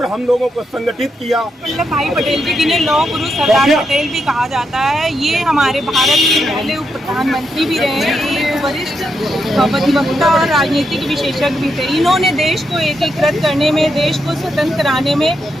हम लोगों को संगठित किया। वल्लभ भाई पटेल जी जिन्हें लौह पुरुष सरदार पटेल भी कहा जाता है, ये हमारे भारत के पहले उप प्रधानमंत्री भी रहे, एक वरिष्ठ अधिवक्ता और राजनीतिक विशेषज्ञ भी थे। इन्होंने देश को एकीकृत करने में, देश को स्वतंत्र कराने में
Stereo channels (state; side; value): normal; both; correlation 0.82